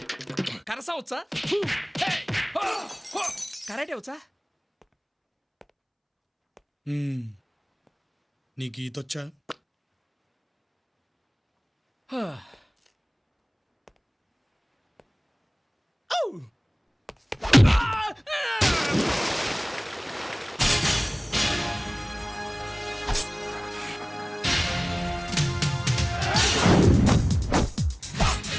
కరసా వచ్చా కరాటే వచ్చా నీకు ఈతొచ్చా?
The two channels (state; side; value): identical; both; correlation 1.00